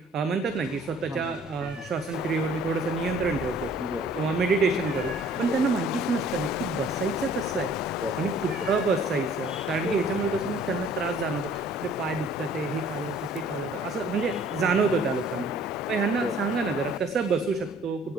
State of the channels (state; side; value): normal; both; correlation 0.54